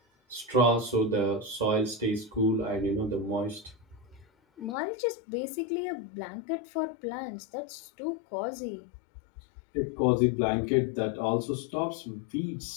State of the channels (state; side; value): drops out; right; at 4.8 s